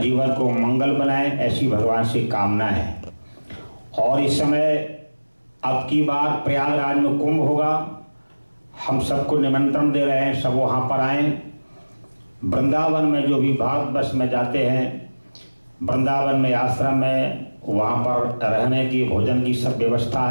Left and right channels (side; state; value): both; inverted; correlation -1.00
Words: को मंगल बनाएं, ऐसी भगवान से कामना है। और इस समय अब की बार प्रयागराज में कुंभ होगा, हम सबको निमंत्रण दे रहे हैं, सब वहाँ पर आएं। वृंदावन में जो भी भारतवर्ष में जाते हैं, वृंदावन में आश्रम में वहाँ पर रहने की भोजन की सब व्यवस्था